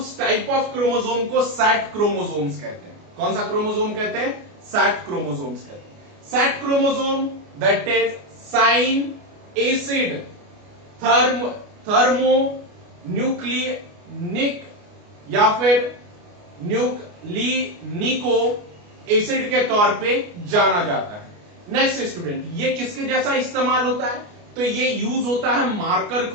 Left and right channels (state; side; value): late; left; 29 ms